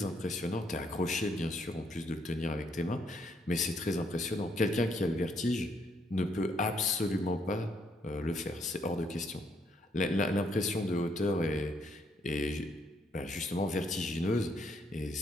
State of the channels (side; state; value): both; normal; correlation 0.72